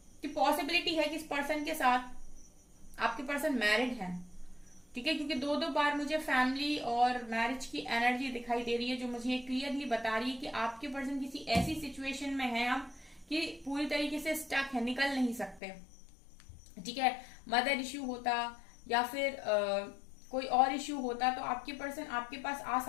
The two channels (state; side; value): drops out; right; at 15.6 s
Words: कि पॉसिबिलिटी है कि इस पर्सन के साथ आपके पर्सन मैरिड है। ठीक है, क्योंकि 2 बार मुझे फैमिली और मैरिज की एनर्जी दिखाई दे रही है, जो मुझे क्लियरली बता रही है कि आपके पर्सन किसी ऐसी सिचुएशन में है अब कि पूरी तरीके से स्टक है, निकल नहीं सकते। ठीक है, मदर इश्यू होता या फिर कोई और इश्यू होता तो आपके पर्सन आपके पास आ